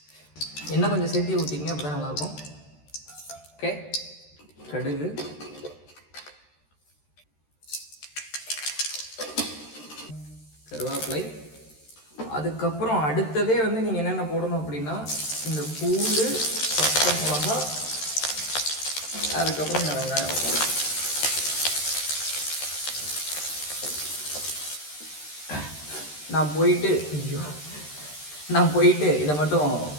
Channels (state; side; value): late; right; 13 ms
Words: எண்ணெய் கொஞ்சம் சேர்த்து ஊற்றிங்க, அப்போ தான் நல்லாயிருக்கும். ஓகே, கடுகு, கருவேப்பிலை, அதுக்கப்புறம் அடுத்ததே வந்து நீங்கள் என்னென்ன போடணும் அப்படின்னா இந்த பூண்டு, பச்சை மிளகா, அதுக்கப்புறம் இந்த வெங்காயம். நான் போயிட்டு இதை மட்டும்